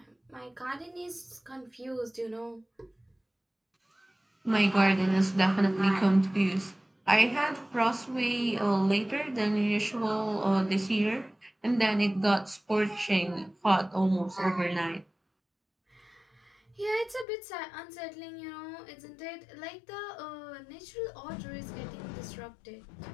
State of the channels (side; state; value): right; drops out; at 17.2 s